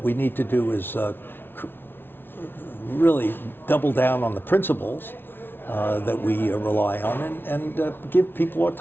we need to do is really double down on the principles that we rely on and give people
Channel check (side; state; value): right; late; 0.10 ms